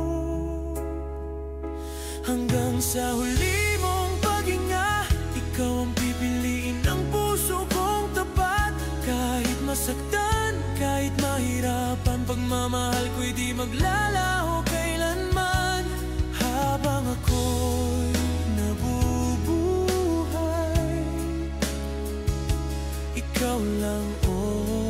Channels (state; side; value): identical; both; correlation 1.00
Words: Hanggang sa huli mong paghinga, ikaw ang pipiliin ng puso kong tapat. Kahit masaktan, kahit mahirapan, pagmamahal ko'y di maglalaho kailanman. Habang ako'y nabubuhay, ikaw lang,